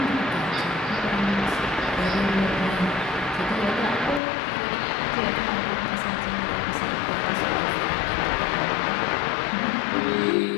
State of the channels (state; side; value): drops out; right; at 4.2 s